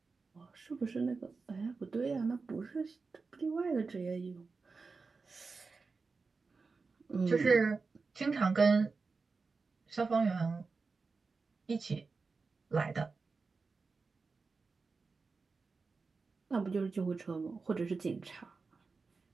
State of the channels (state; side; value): quieter; left; 4.4 dB